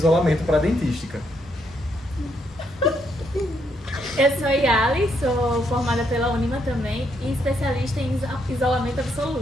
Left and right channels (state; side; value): normal; both; correlation 0.75